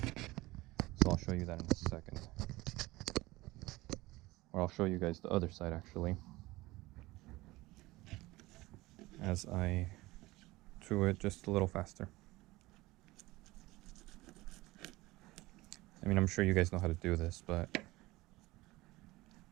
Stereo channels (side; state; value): left; quieter; 19.8 dB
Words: So I'll show you that in a second. Or I'll show you guys the other side actually, as I do it just a little faster. I mean, I'm sure you guys know how to do this, but